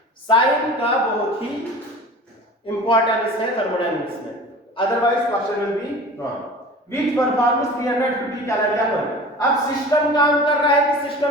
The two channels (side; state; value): both; normal; correlation 0.39